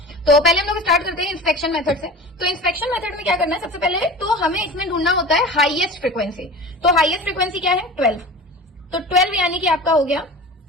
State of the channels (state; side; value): normal; both; correlation 0.35